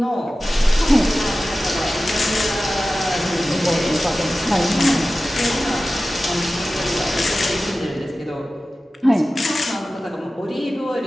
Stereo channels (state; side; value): normal; both; correlation 0.95